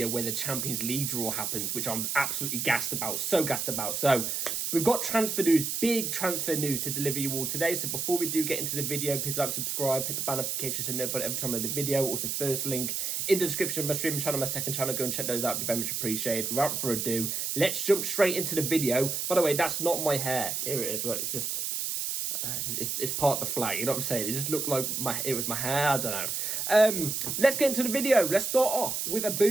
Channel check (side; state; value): right; noise; hiss, 1 dB below the sound